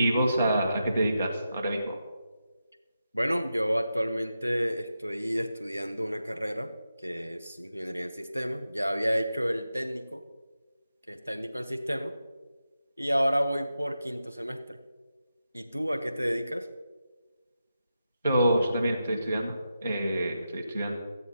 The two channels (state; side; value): inverted; both; correlation -0.89